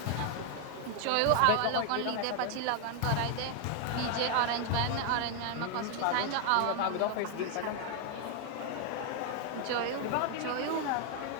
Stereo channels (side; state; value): both; different; correlation 0.00